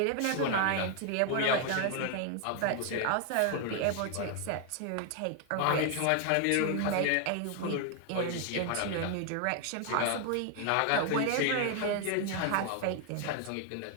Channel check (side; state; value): both; different; correlation 0.00